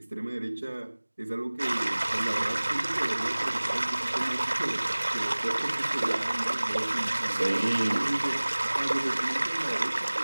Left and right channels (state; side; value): inverted; both; correlation -1.00